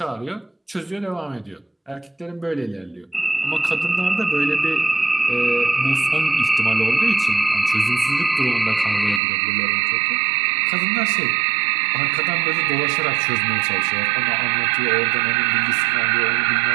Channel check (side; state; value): left; drops out; at 9.2 s